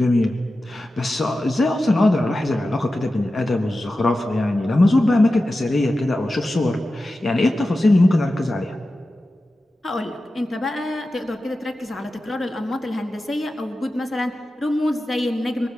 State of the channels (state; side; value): normal; both; correlation 0.93